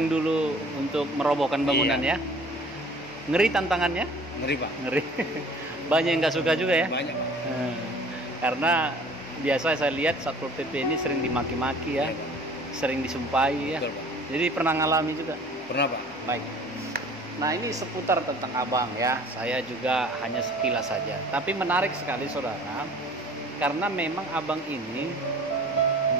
dulu untuk merobohkan bangunan ya. Ngeri tantangannya? Ngeri Pak. Ngeri. Banyak yang nggak suka juga ya. Banyak Pak. Karena biasa saya lihat Satpol PP ini sering dimaki-maki ya, sering disumpahi ya. Betul, Pak. Jadi pernah ngalami juga. Pernah Pak. Baik. Nah ini seputar tentang abang ya. Saya juga hanya sekilas saja. Tapi menarik sekali saudara, karena memang abang ini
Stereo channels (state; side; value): normal; both; correlation 0.49